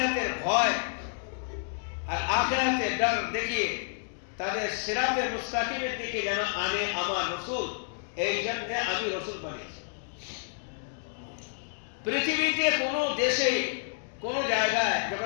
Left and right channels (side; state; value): right; silent; digital silence